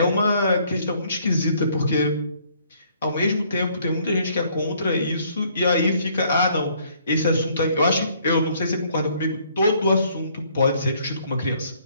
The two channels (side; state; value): both; inverted; correlation -0.64